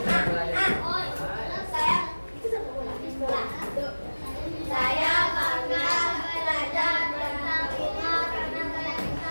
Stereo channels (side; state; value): both; inverted; correlation -1.00